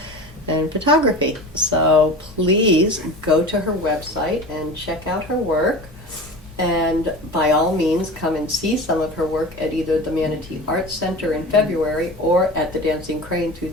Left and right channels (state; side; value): normal; both; correlation 0.33